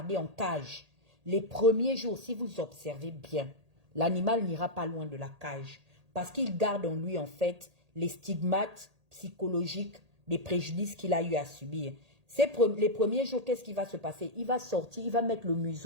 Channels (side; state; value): left; late; 1.8 ms